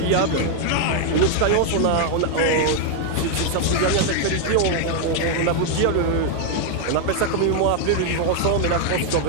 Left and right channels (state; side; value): different; both; correlation 0.00